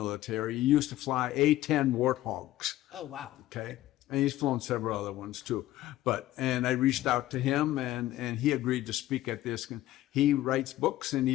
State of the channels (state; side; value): quieter; right; 15.0 dB